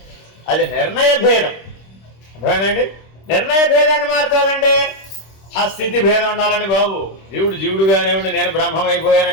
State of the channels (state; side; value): late; right; 26 ms